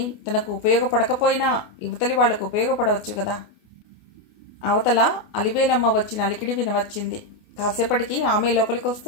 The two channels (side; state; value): right; late; 28 ms